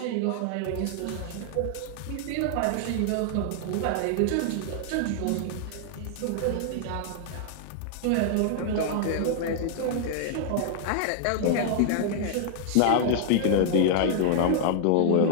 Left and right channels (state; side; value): different; both; correlation -0.01